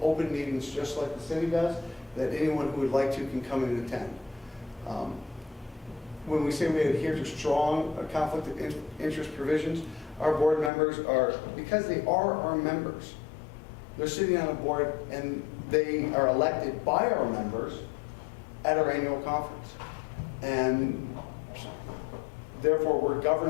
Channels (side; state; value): right; drops out; at 10.7 s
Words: open meetings just like the city does that anyone who would like to can come and attend. When we say we adhere to strong conflict of interest provisions, our board members are, because they are our members, they're sitting on a board and they are elected by our members at our annual conference. And therefore, we're